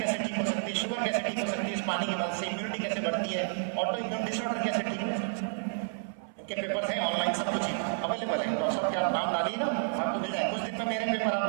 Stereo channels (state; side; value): silent; left; 57 dB below the other